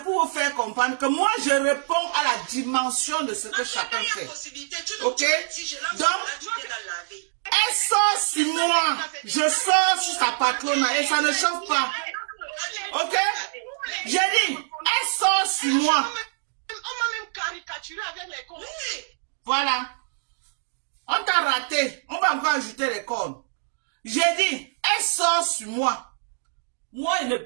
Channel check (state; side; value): silent; left; digital silence